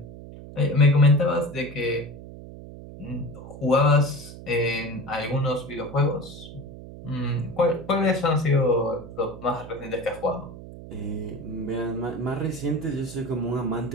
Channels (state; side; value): noise; right; hum, 14 dB below the sound